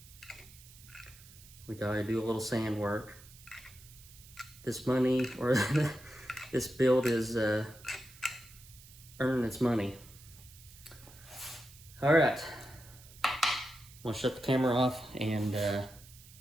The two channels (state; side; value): noise; right; hiss, 21 dB below the sound